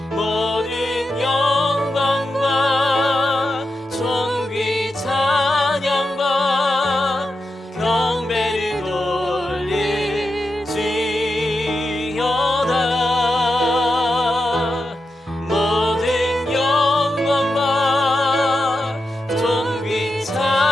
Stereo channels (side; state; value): both; normal; correlation 0.88